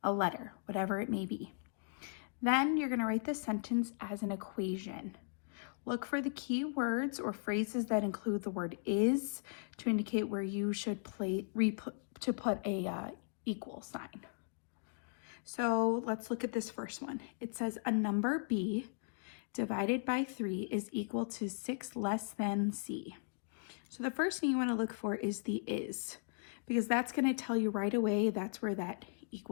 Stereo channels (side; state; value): right; silent; digital silence